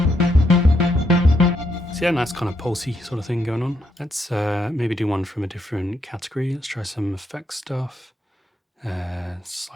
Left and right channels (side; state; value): both; normal; correlation 0.77